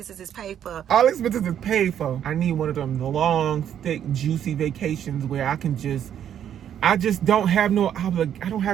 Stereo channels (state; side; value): quieter; left; 9.7 dB